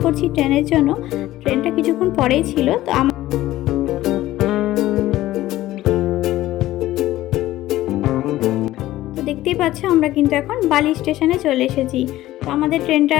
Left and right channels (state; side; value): quieter; right; 15.4 dB